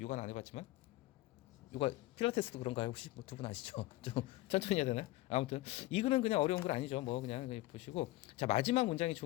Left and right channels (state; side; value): quieter; right; 18.2 dB